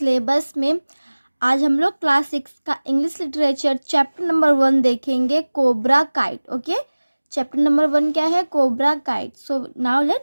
में। आज हम लोग क्लास 6 का इंग्लिश लिटरेचर चैप्टर नंबर 1 देखेंगे, cobra kite. Okay, chapter number 1 क्या है? Cobra kite. So now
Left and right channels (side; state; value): both; inverted; correlation -1.00